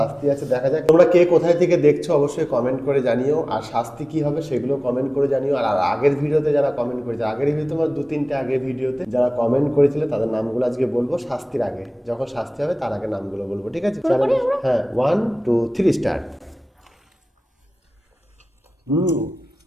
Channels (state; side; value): normal; both; correlation 0.98